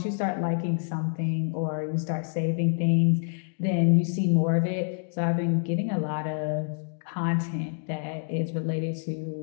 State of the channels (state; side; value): silent; right; digital silence